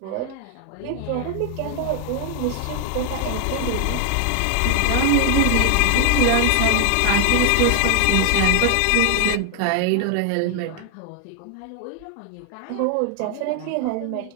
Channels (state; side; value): different; both; correlation 0.01